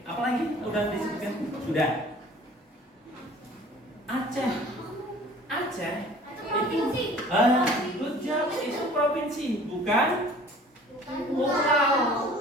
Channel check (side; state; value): both; normal; correlation 0.48